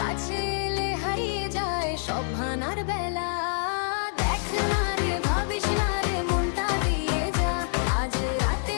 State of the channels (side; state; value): right; silent; digital silence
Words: কাছে এলে হারিয়ে যায় সব ভানার বেলা। দেখ না রে, ভাবিস না রে, মনটা দিয়ে যা, আজ